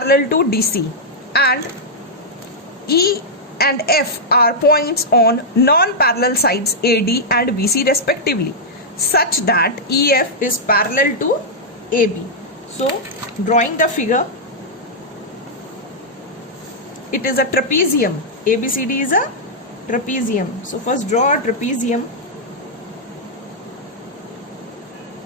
to DC, and E and F are points on non-parallel sides AD and BC respectively, such that EF is parallel to AB. So drawing the figure, it is a trapezium. ABCD is a trapezium. So first draw a trapezium.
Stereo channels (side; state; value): both; normal; correlation -0.06